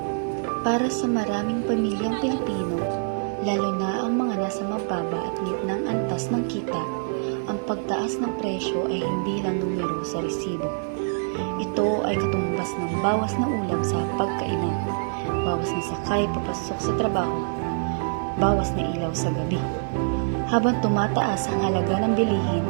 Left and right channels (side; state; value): left; silent; 62 dB below the other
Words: Para sa maraming pamilyang Pilipino, lalo na ang mga nasa mababa at gitnang antas ng kita, ang pagtaas ng presyo ay hindi lang numero sa resibo. Ito ay katumbas ng bawas na ulam sa pagkainan, bawas na sakay papasok sa trabaho, bawas na ilaw sa gabi. Habang tumataas ang halaga ng bilihin,